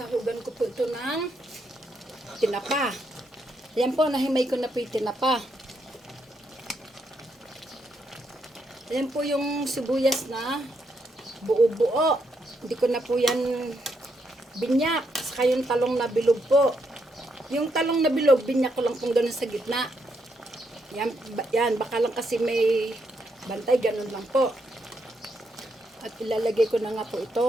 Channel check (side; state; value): both; normal; correlation 0.78